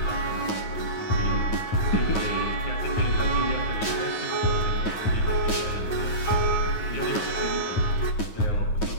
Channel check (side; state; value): right; late; 9.4 ms